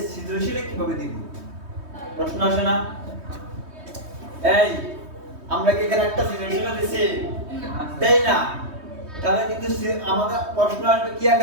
সৃজনশীলে কিভাবে দিব? প্রশ্ন আসে না? এই আমরা কি এখানে একটা সৃজনশীল দিছি? দেই না, তাহলে কিন্তু আমাদের প্রশ্ন আসবে কি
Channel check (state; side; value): late; left; 3.2 ms